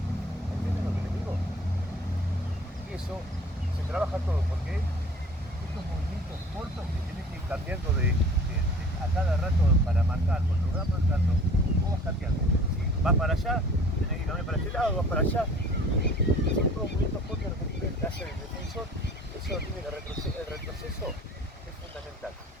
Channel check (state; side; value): normal; both; correlation 0.48